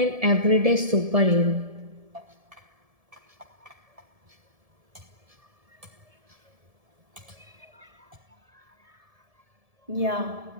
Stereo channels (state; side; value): late; left; 1.7 ms